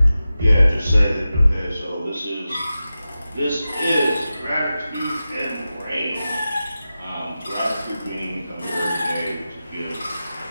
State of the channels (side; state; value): both; inverted; correlation -0.93